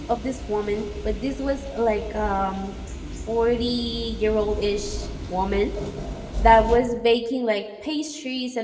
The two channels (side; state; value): both; identical; correlation 1.00